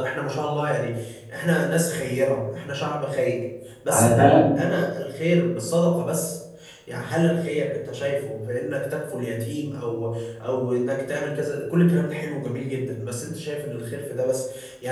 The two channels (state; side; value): identical; both; correlation 1.00